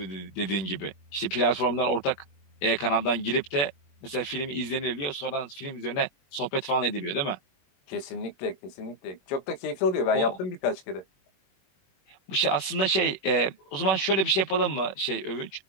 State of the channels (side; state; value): right; late; 21 ms